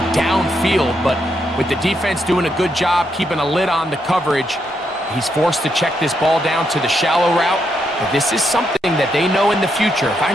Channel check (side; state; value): both; normal; correlation 0.79